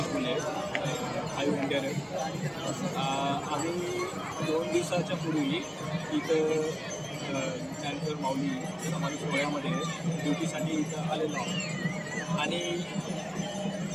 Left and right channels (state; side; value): identical; both; correlation 1.00